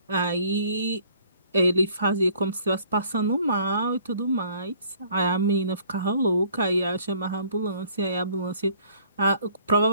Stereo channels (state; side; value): inverted; both; correlation -0.58